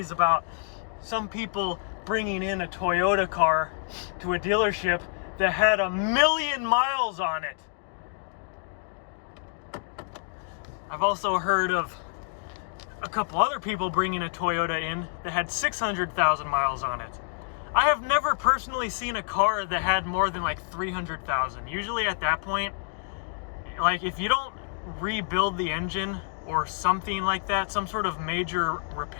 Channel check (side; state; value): right; silent; 60 dB below the other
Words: about some people bringing in a Toyota car to a dealership that had 1,000,000 miles on it. I've also heard of a couple other people bringing a Toyota in that had 600,000 miles on it. I have never personally seen a car that had more than like 300,000. Usually at that point, like if you don't rebuild the engine or something like that, some sort of major